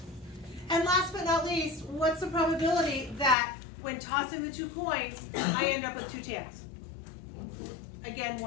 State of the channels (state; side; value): drops out; right; at 3.4 s